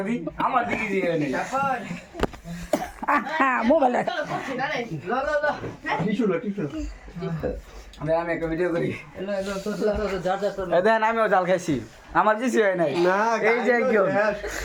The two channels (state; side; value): identical; both; correlation 1.00